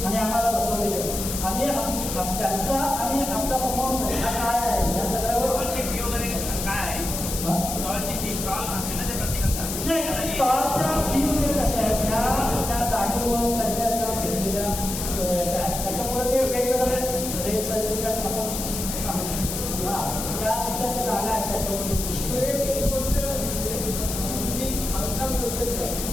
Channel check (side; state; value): left; noise; hiss, 5 dB below the sound